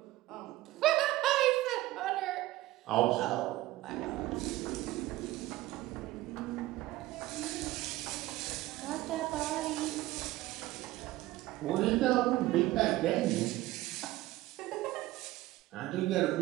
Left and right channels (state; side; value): quieter; left; 17.1 dB